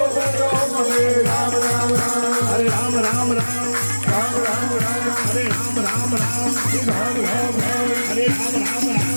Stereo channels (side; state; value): both; inverted; correlation -1.00